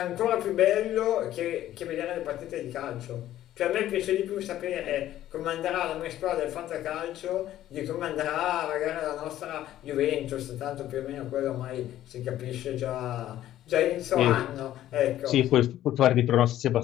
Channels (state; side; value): quieter; right; 13.0 dB